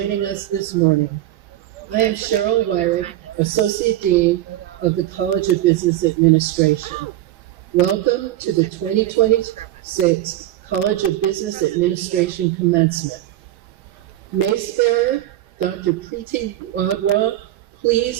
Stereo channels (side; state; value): left; quieter; 14.1 dB